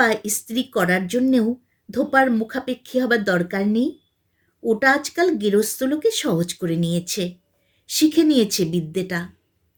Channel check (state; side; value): identical; both; correlation 1.00